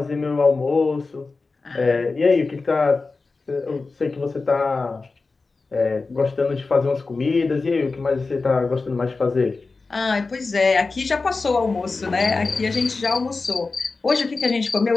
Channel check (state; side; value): quieter; right; 3.9 dB